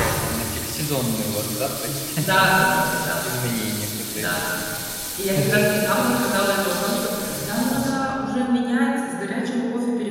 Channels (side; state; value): both; identical; correlation 1.00